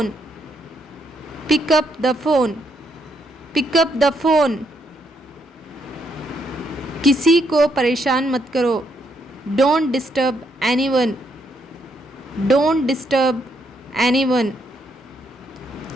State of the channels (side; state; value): both; normal; correlation 0.75